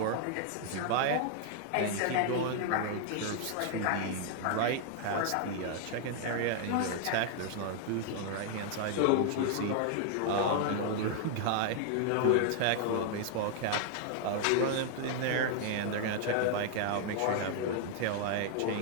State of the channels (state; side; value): different; both; correlation 0.00